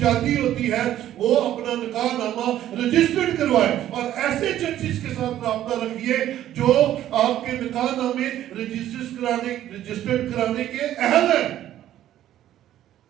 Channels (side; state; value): left; quieter; 12.3 dB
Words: ہوتی ہے وہ اپنا نکاح نامہ رجسٹرڈ کروائے. اور ایسے چرچز کے ساتھ رابطہ رکھیے جو آپ کے نکاح نامے رجسٹرڈ کرانے کے اہل ہیں،